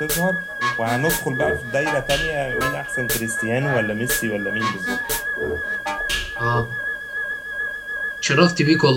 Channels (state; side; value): identical; both; correlation 1.00